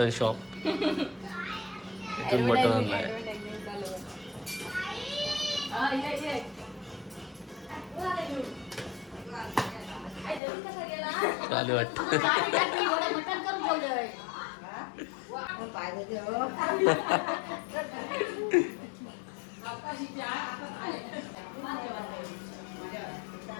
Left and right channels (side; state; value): right; drops out; at 10.4 s